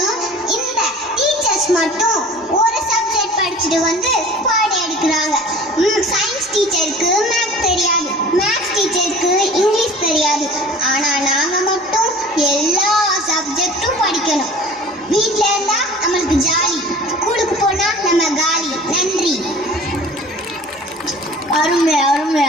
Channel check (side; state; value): both; normal; correlation 0.44